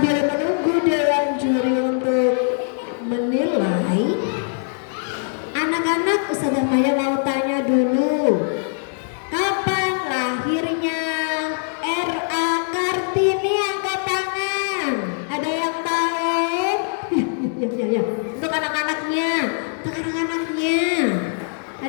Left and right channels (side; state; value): right; silent; digital silence